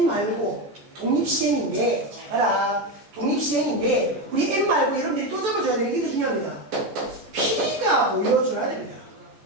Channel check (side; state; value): left; late; 14 ms